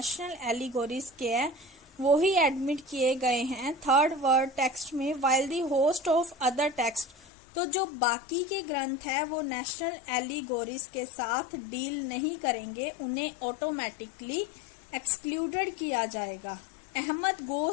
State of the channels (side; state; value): right; drops out; at 7.2 s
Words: एलिगोरीज के हैं, वो ही एडमिट किए गए हैं थर्ड वर्ड टेक्स्ट में, while the host of other text, तो जो बाकी के ग्रंथ है वो नेशनल एलिगोरीज के साथ डील नहीं करेंगे, उन्हें ऑटोमेटिकली एक्सक्लूडेड किया जाएगा। Ahmad